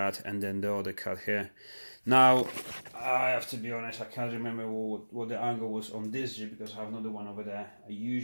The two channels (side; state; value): both; inverted; correlation -1.00